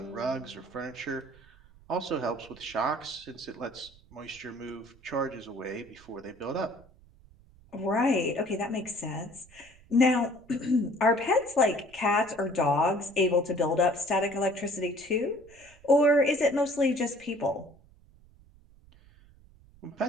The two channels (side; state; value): right; noise; rumble, 26 dB below the sound